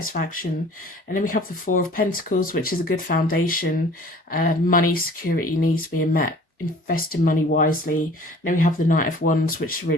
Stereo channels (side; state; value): both; normal; correlation 0.48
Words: and then we have the 4 of Pentacles, which is a good foundation, money, security, needs being met, investing money wisely. And then we have the Knight of Wands, which is a